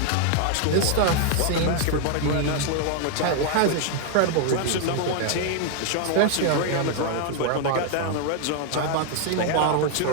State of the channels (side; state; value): both; different; correlation 0.00